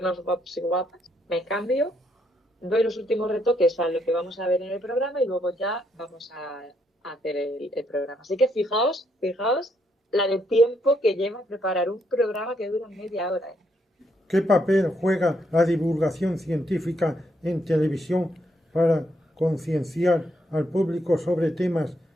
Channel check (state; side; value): normal; both; correlation 0.75